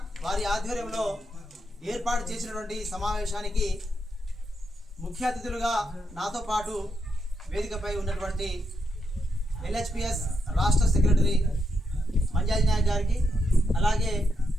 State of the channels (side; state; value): both; normal; correlation 0.83